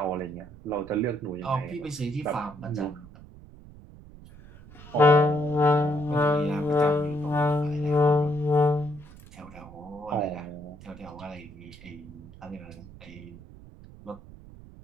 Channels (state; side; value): noise; right; rumble, 19 dB below the sound